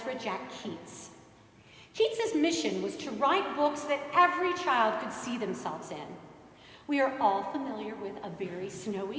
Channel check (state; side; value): identical; both; correlation 1.00